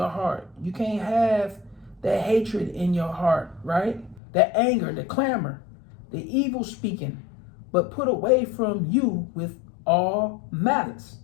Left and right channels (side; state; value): right; drops out; at 4.2 s